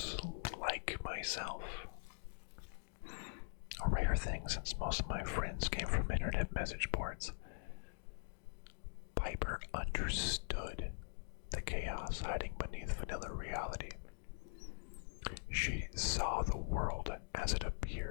like myself. A rare thing since most of my friends came from internet message boards. Piper understood the chaos hiding beneath vanilla reality. She saw the world as it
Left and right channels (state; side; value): silent; right; digital silence